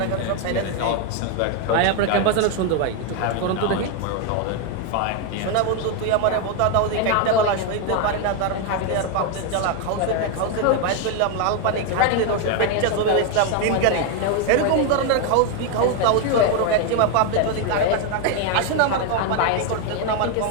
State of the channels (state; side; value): different; both; correlation 0.01